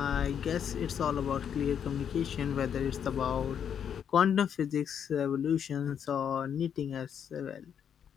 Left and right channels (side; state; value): right; quieter; 8.2 dB